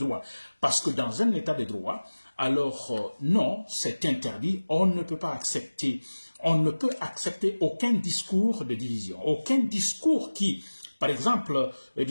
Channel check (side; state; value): both; inverted; correlation -1.00